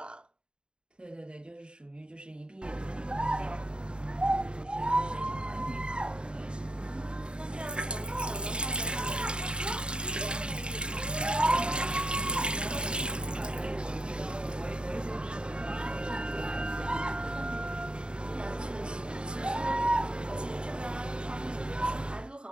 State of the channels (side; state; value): left; late; 0.051 ms